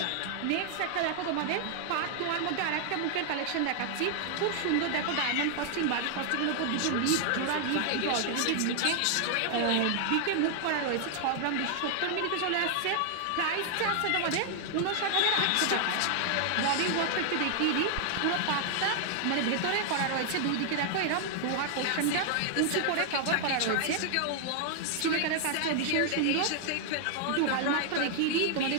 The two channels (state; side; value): different; both; correlation 0.00